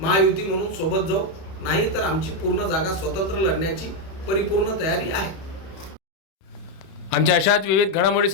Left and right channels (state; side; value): late; right; 31 ms